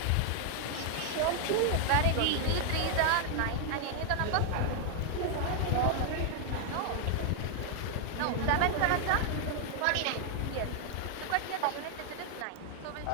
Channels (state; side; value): different; both; correlation 0.00